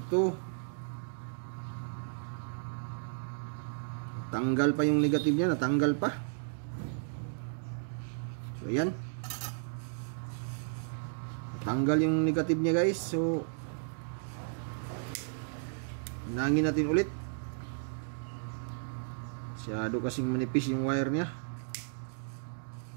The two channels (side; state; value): left; silent; digital silence